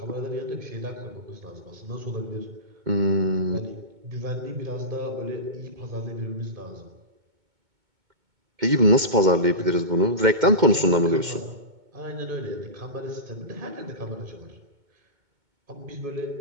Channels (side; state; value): left; late; 2.1 ms